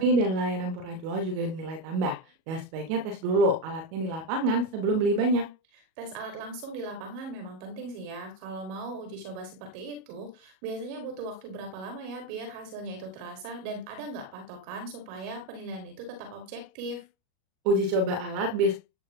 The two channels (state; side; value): late; left; 37 ms